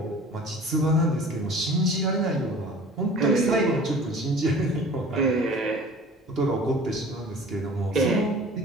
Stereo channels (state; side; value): normal; both; correlation 0.44